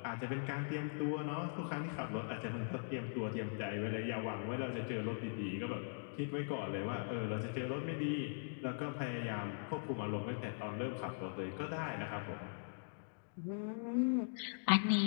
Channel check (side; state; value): right; silent; digital silence